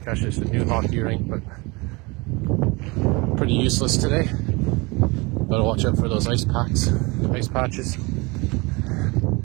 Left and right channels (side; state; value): left; quieter; 26.0 dB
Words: actually it's a new hockey rink, but pretty useless today. Gotta watch out for those ice patches.